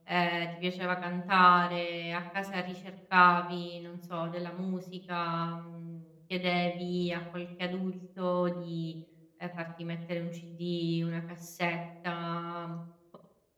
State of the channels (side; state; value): both; identical; correlation 1.00